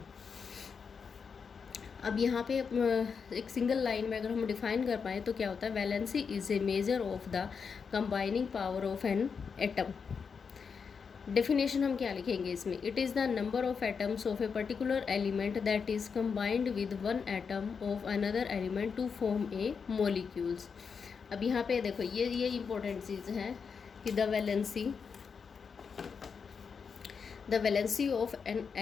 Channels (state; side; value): quieter; right; 5.9 dB